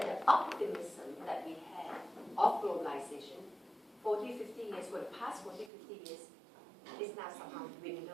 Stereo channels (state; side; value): drops out; left; at 5.7 s